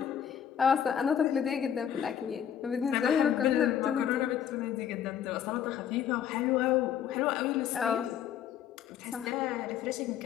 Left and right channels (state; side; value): quieter; right; 9.3 dB